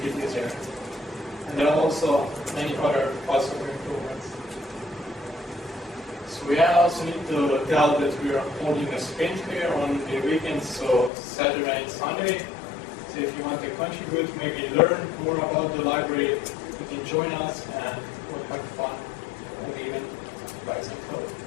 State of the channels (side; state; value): right; drops out; at 11.1 s